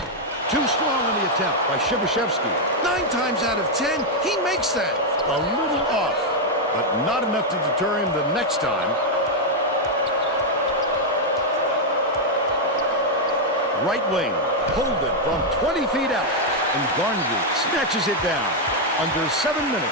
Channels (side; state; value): both; normal; correlation -0.01